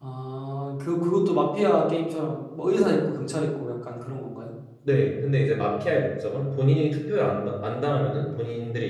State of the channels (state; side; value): identical; both; correlation 1.00